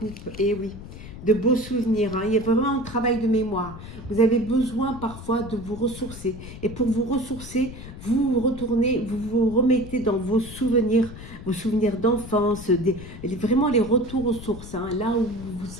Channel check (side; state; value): left; noise; rumble, 13 dB below the sound